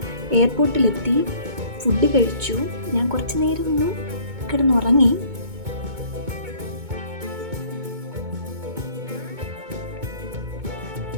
എയർപോർട്ടിലെത്തി, ഫുഡ് കഴിച്ചു. ഞാൻ കുറച്ച് നേരം ഒന്ന് കിടന്നുറങ്ങി.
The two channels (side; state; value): left; late; 2.2 ms